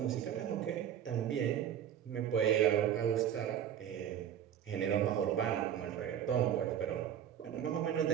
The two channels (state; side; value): quieter; left; 9.8 dB